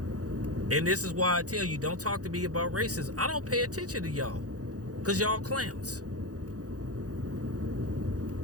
And this is why I tell you, don't talk to me about racism. I don't pay attention to y'all, because y'all clowns.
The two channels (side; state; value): left; late; 0.67 ms